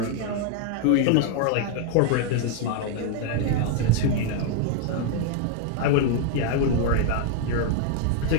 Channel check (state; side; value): different; both; correlation 0.00